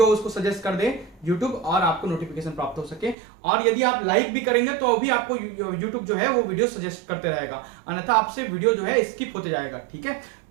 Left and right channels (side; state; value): left; drops out; at 3.2 s